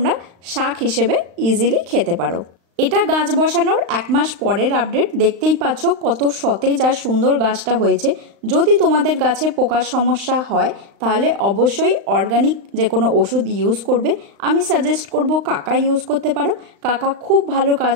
শাক হিসেবে ইজিলি খেতে পারো। এটা গাছ বসানোর 1 মাস পরের আপডেট। দেখতেই পাচ্ছ কত সতেজ আর সুন্দর গাছটা হয়েছে। যদি তোমাদের গাছে পোকার সমস্যা হয় তাহলে অবশ্যই অর্গানিক যে কোনো ওষুধ ইউজ করবে। আমি সাজেস্ট করব কাকা ইউজ করতে পারো। কাকা খুব ভালো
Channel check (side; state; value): left; late; 35 ms